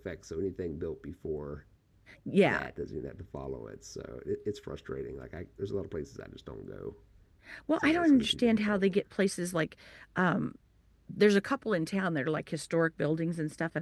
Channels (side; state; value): both; identical; correlation 1.00